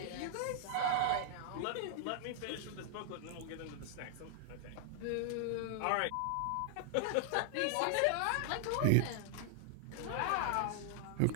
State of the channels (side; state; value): both; different; correlation 0.00